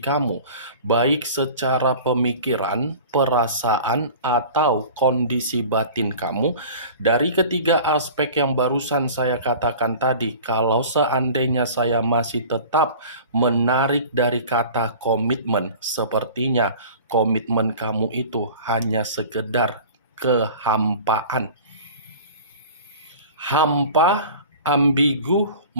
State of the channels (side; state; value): both; inverted; correlation -0.41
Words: baik secara pemikiran, perasaan, atau kondisi batin kamu, dari ketiga aspek yang barusan saya katakan tadi, kalau seandainya saya masih tetap menarik dari kata komitmen, sepertinya komitmen kamu itu hanya sekedar kehampaan. Hampa, ambigu,